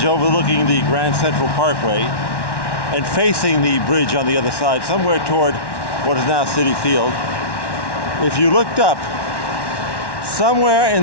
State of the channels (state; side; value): late; right; 1.1 ms